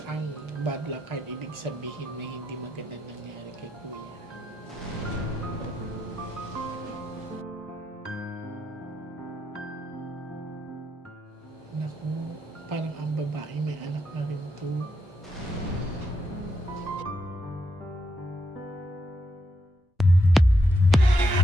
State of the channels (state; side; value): normal; both; correlation 0.80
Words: ang bad luck card, ibig sabihin na hindi magandang nangyari kay Kuya. Naku, parang ang babae may anak na rin to.